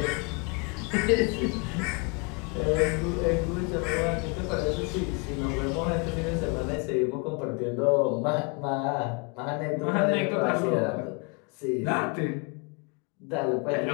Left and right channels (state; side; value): quieter; right; 32.9 dB